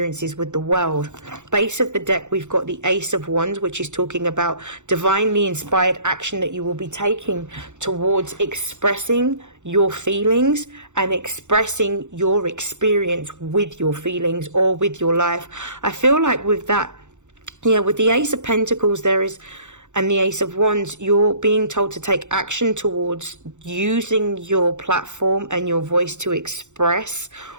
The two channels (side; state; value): left; late; 0.84 ms